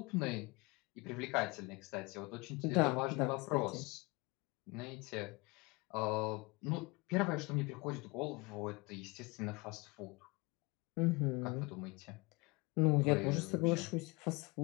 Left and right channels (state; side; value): quieter; right; 25.8 dB